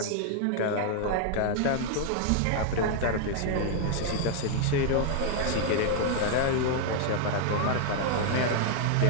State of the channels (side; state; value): both; different; correlation 0.00